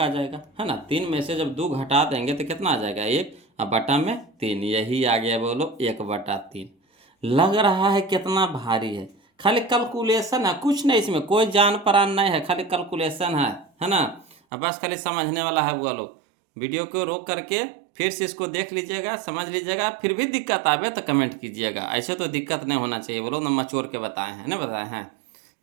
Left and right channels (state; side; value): drops out; left; at 14.4 s